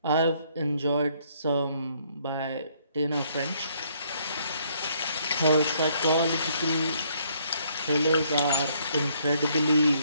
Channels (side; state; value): both; inverted; correlation -0.67